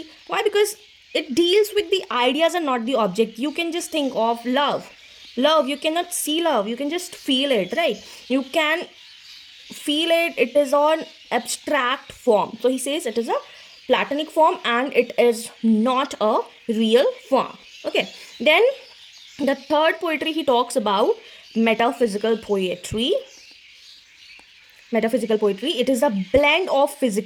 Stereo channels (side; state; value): both; identical; correlation 1.00